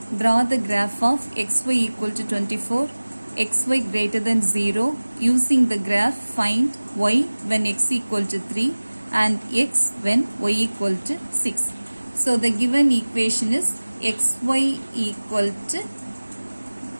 Draw the graph of xy equal to 24, xy greater than 0. Using the graph, find y when x equal to 3 and x when y equal to 6. So the given equation is xy equal to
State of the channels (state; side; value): inverted; both; correlation -1.00